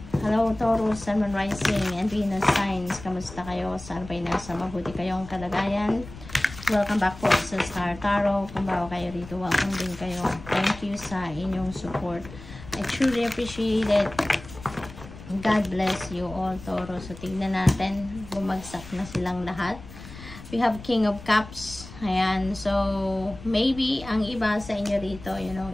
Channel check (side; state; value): left; noise; rumble, 15 dB below the sound